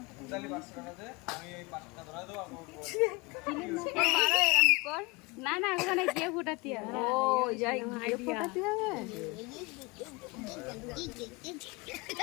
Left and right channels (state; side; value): quieter; right; 26.1 dB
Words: না না, ওখানে গিয়ে ফোটাতে হবে। ও যাই গিয়ে ফোটাতে হবে।